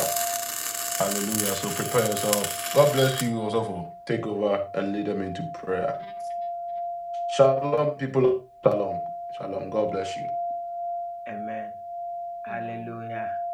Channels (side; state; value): both; identical; correlation 1.00